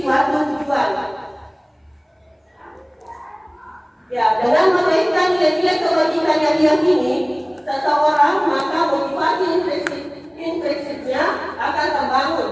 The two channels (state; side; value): identical; both; correlation 1.00